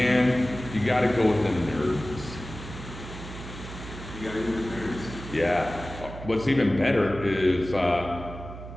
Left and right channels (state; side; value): noise; right; hum, 12 dB below the sound